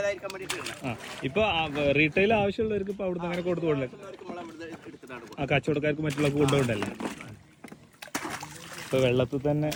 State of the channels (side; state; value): both; identical; correlation 1.00